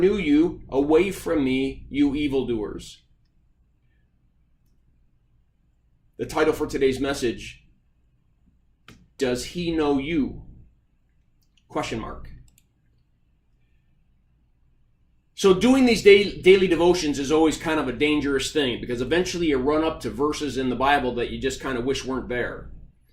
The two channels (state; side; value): identical; both; correlation 1.00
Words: you. Away from me, you evildoers. The title for today's message, Does he know you? Question mark. So doing these daily devotions is always kind of a dangerous thing, because eventually you run up to verses in the Bible that you just kind of wish weren't there.